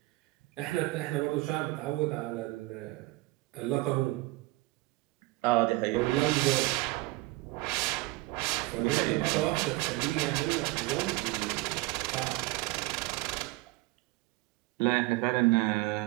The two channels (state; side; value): quieter; left; 21.0 dB